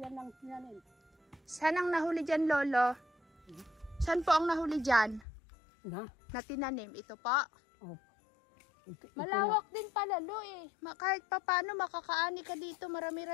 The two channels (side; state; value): right; drops out; at 5.2 s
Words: ng tinanin. Saan ang nahuli dyan, Lolo? Saan po ang nahuli dyan? Na? Na tinanim? Ito po? Oh. Ito Malawak din pala, Lo, eh. Kahit pa paano makakaani ka dito,